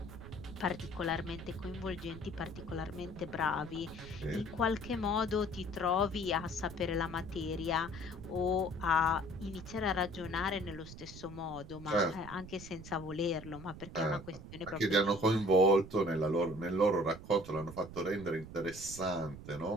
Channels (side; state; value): right; noise; rumble, 13 dB below the sound